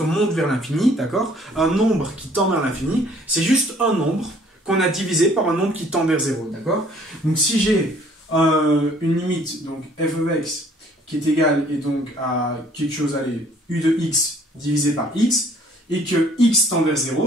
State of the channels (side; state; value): both; normal; correlation 0.58